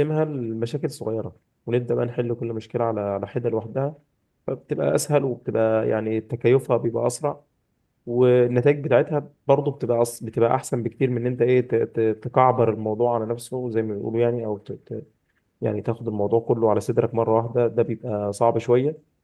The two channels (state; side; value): identical; both; correlation 1.00